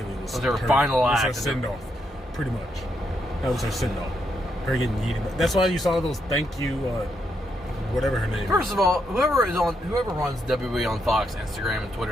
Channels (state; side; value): normal; both; correlation 0.79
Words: was her final act. Her send off, pretty much. That was her send off. Her getting yeeted. That's why you saw those thank you, whatever her name. First of all, whoever runs WWE on Fox, Instagram, and